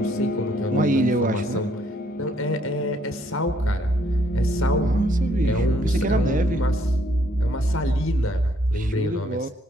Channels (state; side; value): normal; both; correlation 0.68